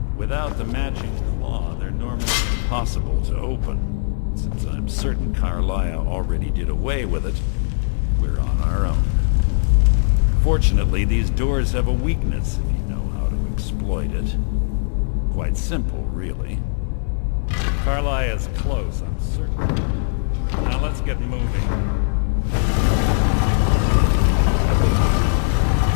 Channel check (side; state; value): right; silent; digital silence